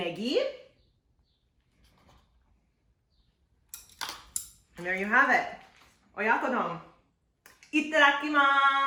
And there you have it. Oyakodon.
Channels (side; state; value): both; identical; correlation 1.00